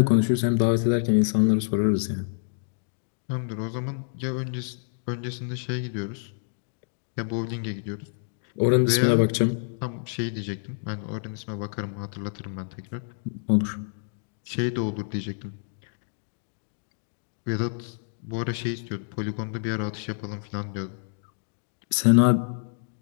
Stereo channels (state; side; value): silent; right; digital silence